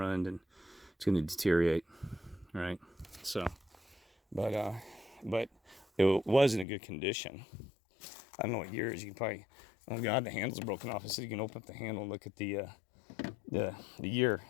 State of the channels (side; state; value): right; drops out; at 6.7 s